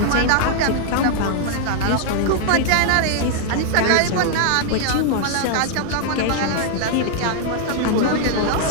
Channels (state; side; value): different; both; correlation -0.01